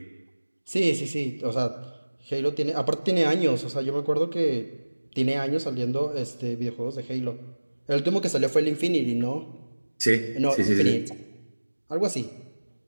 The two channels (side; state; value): both; inverted; correlation -1.00